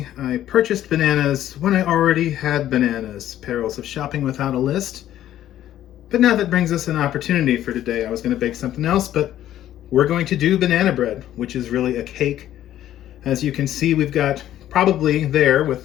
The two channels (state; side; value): quieter; right; 12.3 dB